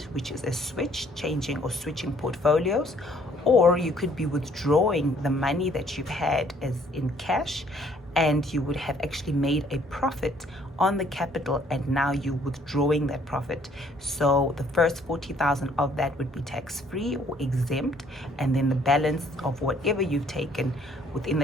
which is a changing or switching portfolios. Or you could be withdrawing the money that you've had as in cash, and you would have actually made a profit on the capital, and now you're withdrawing that profit. So the first 40,000 of that would be tax-free or exempt, and then the balance of whatever you've taken within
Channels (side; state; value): both; normal; correlation 0.62